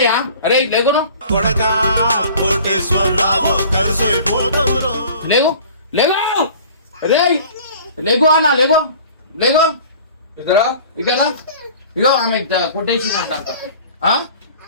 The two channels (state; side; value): inverted; both; correlation -0.46